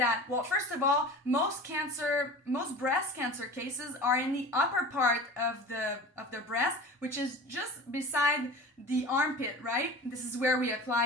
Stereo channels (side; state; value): both; normal; correlation 0.37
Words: well, first of all, most breast cancer cases are in the upper part of the breast, which is just beside the armpit, right? This is where we